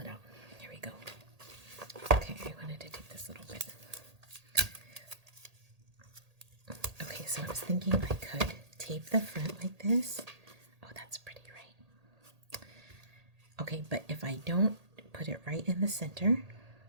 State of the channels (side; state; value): left; late; 1.8 ms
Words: out. Here we go. Okay, I wanted to take this little bit. Okay, so I was thinking I could tape the front like this. Oh, that's pretty, right? Okay, but if I don't put it right in the center,